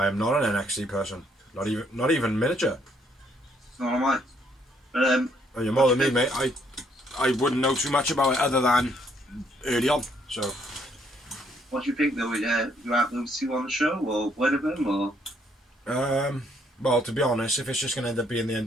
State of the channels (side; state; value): both; normal; correlation 0.68